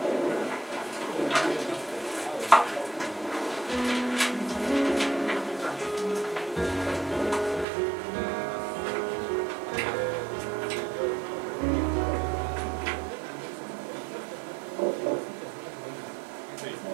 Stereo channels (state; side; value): drops out; left; at 7.7 s